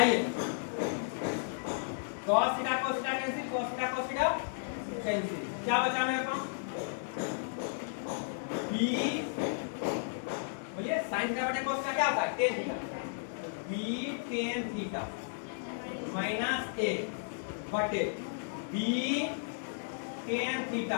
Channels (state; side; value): silent; right; digital silence